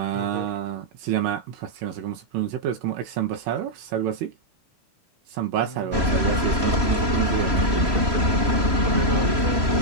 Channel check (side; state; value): left; late; 3.0 ms